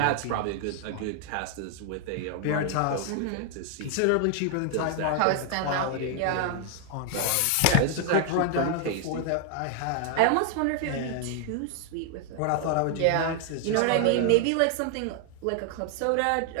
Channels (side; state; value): both; different; correlation 0.00